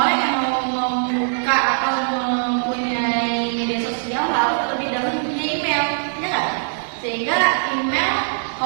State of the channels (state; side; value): silent; left; 58 dB below the other